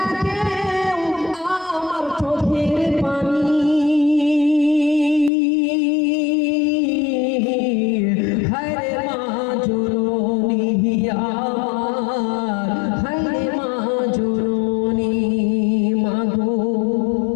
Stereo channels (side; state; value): right; drops out; at 5.3 s